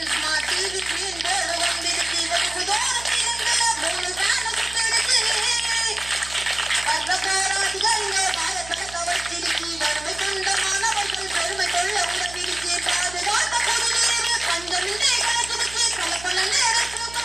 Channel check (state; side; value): noise; right; hum, 17 dB below the sound